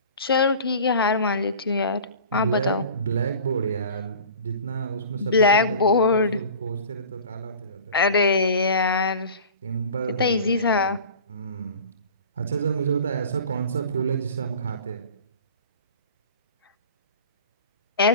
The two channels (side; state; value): both; inverted; correlation -0.40